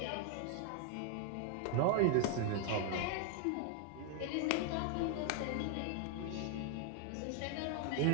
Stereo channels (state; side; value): different; both; correlation 0.01